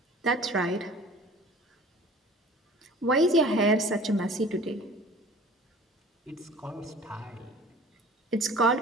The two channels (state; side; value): normal; both; correlation 0.45